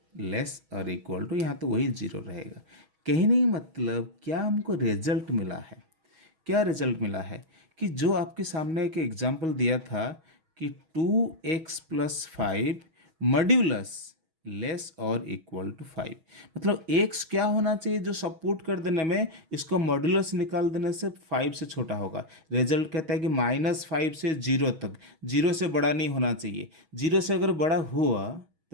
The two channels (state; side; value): late; left; 6.2 ms